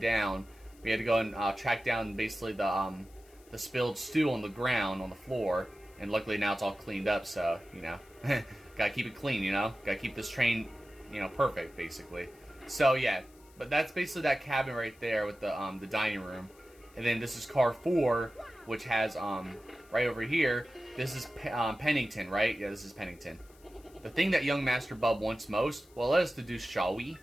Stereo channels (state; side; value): noise; left; hiss, 28 dB below the sound